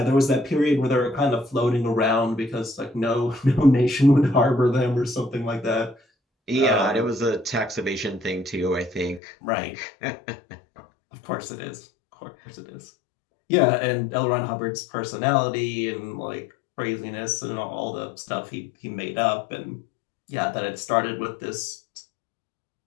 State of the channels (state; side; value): drops out; right; at 9.2 s